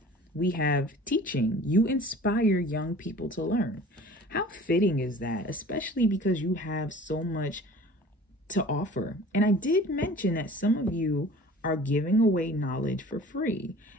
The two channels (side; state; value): both; normal; correlation 0.45